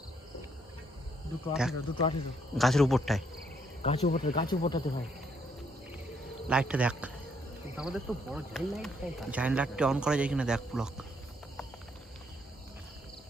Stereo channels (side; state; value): both; normal; correlation 0.71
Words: দুটো দেখ। 18 গাছের উপরটায় গাছ উপরটাতে ভাই। লাইটটা দেখ, আমাদের তো বড় জাইল লাইট তাই জায়েন্ট লাইটটা অন করা যায় কিনা দেখ প্লাগ।